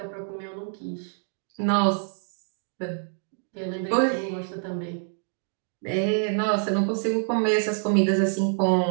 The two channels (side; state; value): left; silent; 61 dB below the other